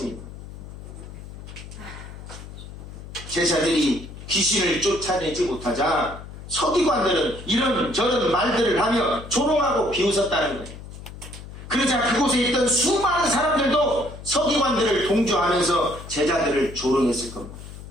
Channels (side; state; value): left; noise; hum, 13 dB below the sound